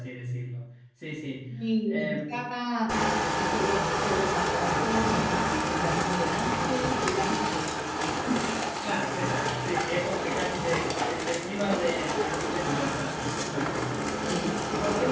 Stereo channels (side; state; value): both; identical; correlation 1.00